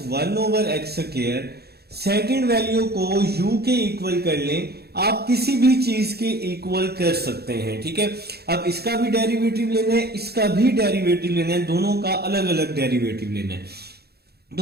1 over x square. Second value को u के इक्वल कर लें। आप किसी भी चीज के इक्वल कर सकते हैं। ठीक है, अब इसका भी डेरिवेटिव लेना है, इसका भी डेरिवेटिव लेना है, दोनों का अलग अलग डेरिवेटिव लेना है।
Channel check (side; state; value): left; late; 0.46 ms